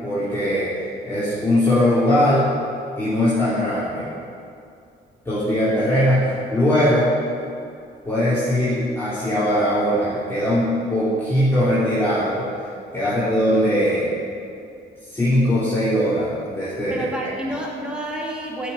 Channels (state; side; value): normal; both; correlation 0.63